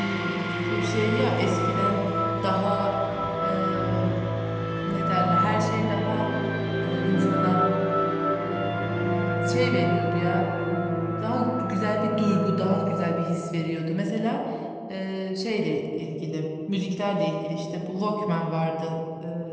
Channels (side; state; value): both; identical; correlation 1.00